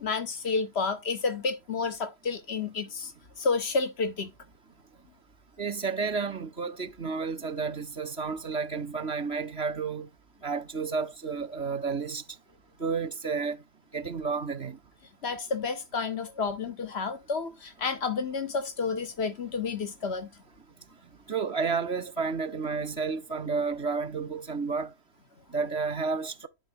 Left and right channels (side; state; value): right; late; 3.0 ms